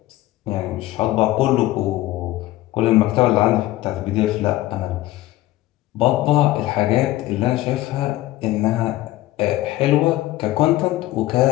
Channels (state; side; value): quieter; right; 16.4 dB